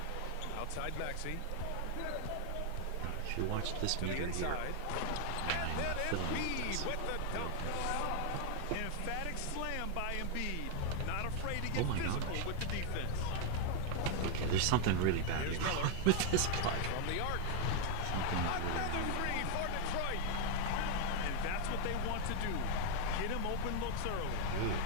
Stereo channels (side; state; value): both; different; correlation 0.00